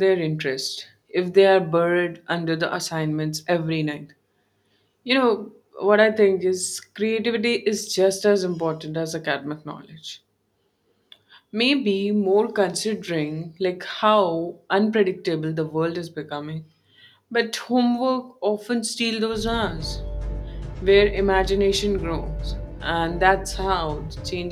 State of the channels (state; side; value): identical; both; correlation 1.00